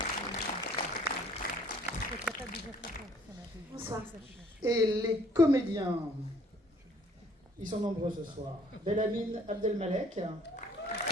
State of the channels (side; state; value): both; normal; correlation 0.59